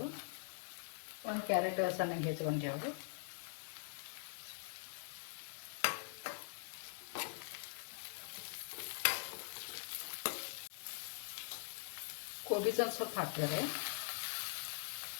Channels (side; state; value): right; silent; digital silence